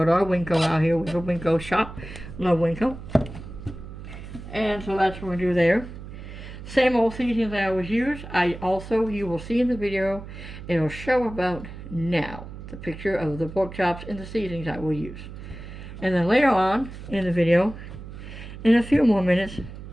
to our Winco out here. We go Winco shop. Love Winco. And so that's what we do there. Same old seasonings I always use. You will see in the video, it'll show about now, the picture of the pork chops and the seasonings I will use. And then later on in the video, in a few more minutes,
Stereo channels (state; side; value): noise; right; hum, 12 dB below the sound